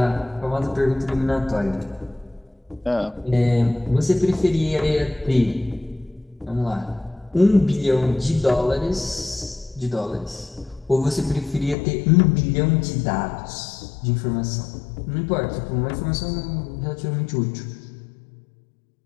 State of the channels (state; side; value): drops out; right; at 11.8 s